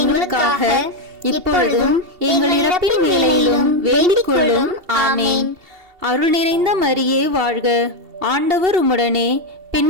எங்களுக்காக இப்பொழுதும் எங்கள் இறப்பின் வேளையிலும் வேண்டிக் கொள்ளும். ஆமேன். அருள் நிறைந்த மரியே வாழ்க. ஆண்டவர் உம்முடனே,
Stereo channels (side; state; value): left; late; 2.7 ms